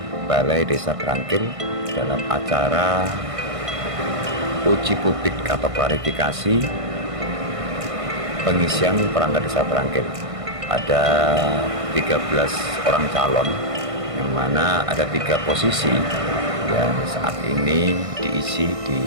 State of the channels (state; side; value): late; left; 1.5 ms